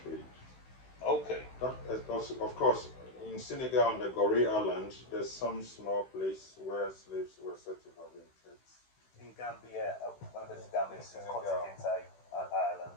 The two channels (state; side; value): late; right; 16 ms